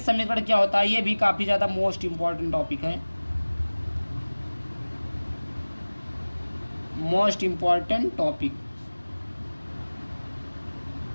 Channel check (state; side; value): inverted; both; correlation -1.00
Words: समीकरण क्या होता है, ये भी काफ़ी ज़्यादा मोस्ट इम्पॉर्टेंट टॉपिक है, most important topic,